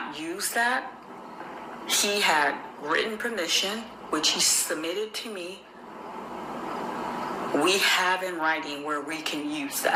use that. He had written permission, which he submitted to me. We have in writing where we can use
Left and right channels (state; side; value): identical; both; correlation 1.00